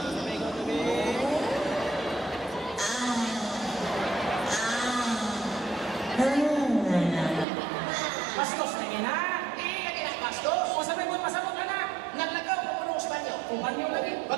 Bastos na gina. Hindi lagi na bastos. O, sabi mo, pasabot ka na. Naglagaw ko po ng Espanyo. Kumanyo lagi.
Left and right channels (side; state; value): left; drops out; at 7.5 s